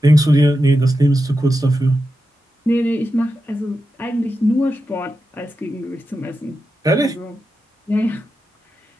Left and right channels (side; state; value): both; normal; correlation 0.89